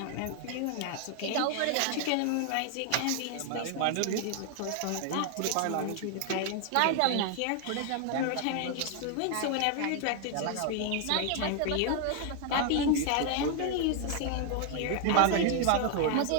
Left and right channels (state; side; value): different; both; correlation 0.00